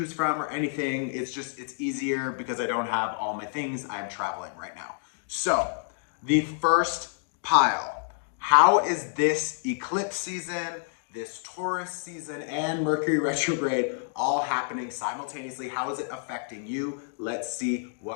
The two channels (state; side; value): silent; right; digital silence